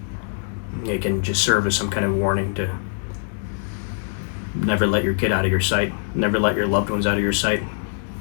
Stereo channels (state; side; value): silent; right; digital silence